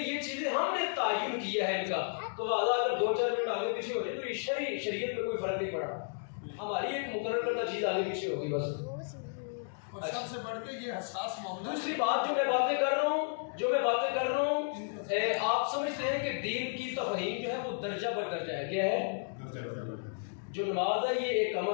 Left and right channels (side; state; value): right; silent; digital silence